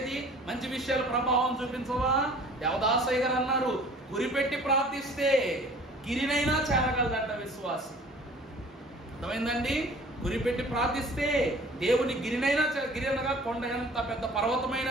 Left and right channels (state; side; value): normal; both; correlation 0.49